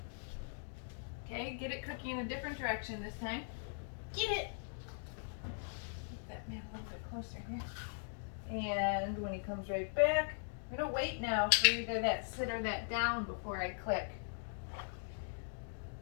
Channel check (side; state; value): right; silent; digital silence